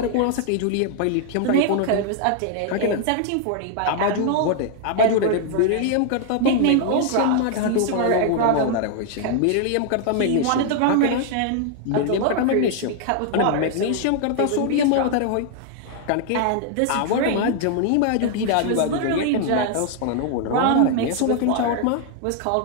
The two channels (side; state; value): both; different; correlation 0.00